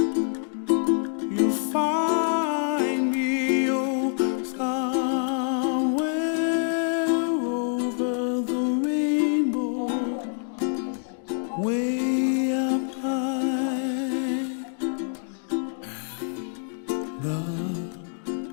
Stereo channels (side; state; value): right; silent; 61 dB below the other